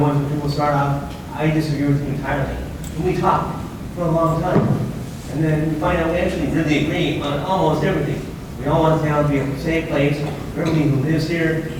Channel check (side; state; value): both; identical; correlation 1.00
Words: where people start off, I disagree with you entirely. And we talk for a long time. And then we find out we actually really agree on almost everything. We all want town to be a safe place where everybody who lives here